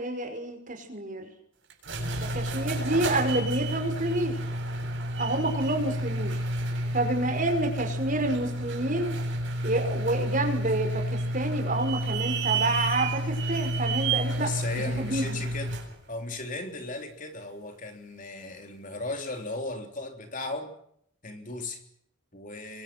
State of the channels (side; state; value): both; normal; correlation 0.30